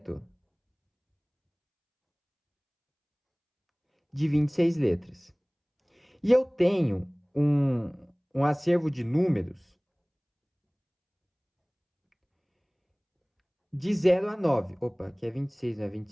de 26 letras. E eu tenho um acervo de números de 0 a 9. Opa, aqui é 26, não é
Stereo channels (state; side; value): identical; both; correlation 1.00